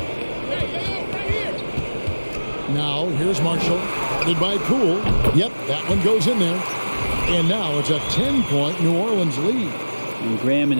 Now, here's Marshall. Guarded by Poole. Yep, that one goes in there. And now it's a 10-point New Orleans lead. And Graham and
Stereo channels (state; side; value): inverted; both; correlation -1.00